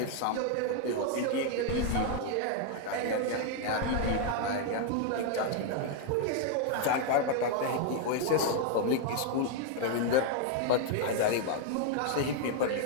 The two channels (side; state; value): both; different; correlation 0.00